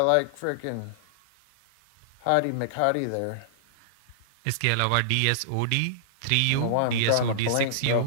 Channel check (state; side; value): different; both; correlation -0.01